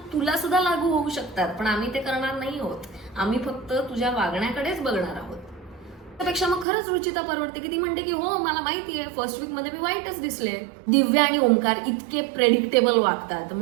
तुला सुद्धा लागू होऊ शकतात, पण आम्ही ते करणार नाही आहोत. आम्ही फक्त तुझ्या वागण्याकडेच बघणार आहोत. त्यापेक्षा मग खरंच रुचिता परवडते की ती म्हणते की हो मला माहिती आहे फर्स्ट वीक मध्ये मी वाईटच दिसले. दिव्या आणि ओमकार इतके प्रेडिक्टेबल वागतात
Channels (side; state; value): left; drops out; at 6.7 s